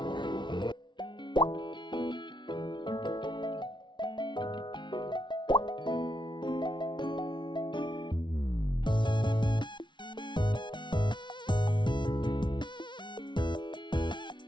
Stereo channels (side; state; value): right; late; 0.23 ms